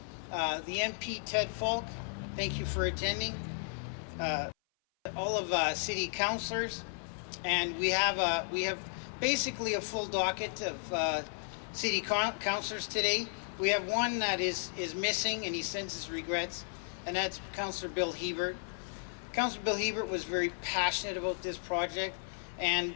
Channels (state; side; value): silent; right; 55 dB below the other